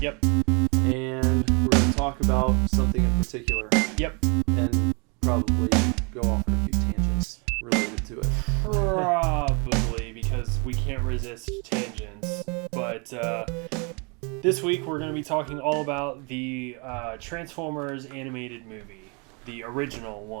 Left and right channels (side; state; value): left; quieter; 32.7 dB